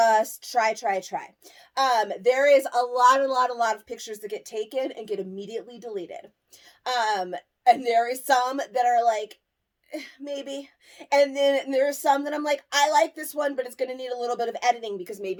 try. There is a lot of pictures that get taken and get immediately deleted. And there is some that are like, maybe. And then there are some that I'm like, I like this one, but it's going to need a little bit of editing because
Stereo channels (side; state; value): both; identical; correlation 1.00